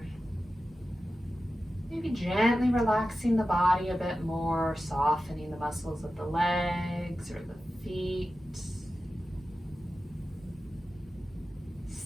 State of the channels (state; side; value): normal; both; correlation 0.93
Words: Maybe gently relaxing the body a bit more, softening the muscles of the legs or the feet.